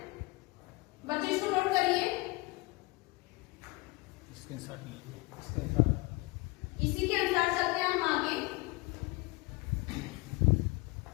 बच्चों इसको नोट करिए। स्क्रीनशॉट लीजिए, स्क्रीनशॉट। इसी के अनुसार चलते हैं हम आगे।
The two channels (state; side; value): quieter; right; 23.9 dB